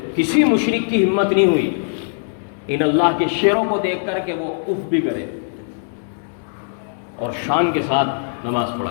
کسی مشرک کی ہمت نہیں ہوئی ان اللہ کے شیروں کو دیکھ کر کہ وہ اف بھی کرے، اور شان کے ساتھ نماز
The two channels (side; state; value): right; silent; digital silence